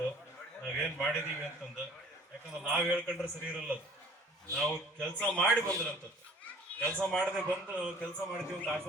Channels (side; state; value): both; normal; correlation 0.51